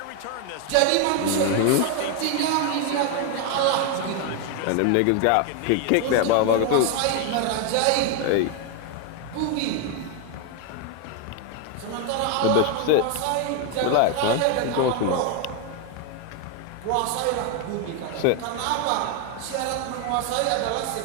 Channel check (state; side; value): different; both; correlation 0.01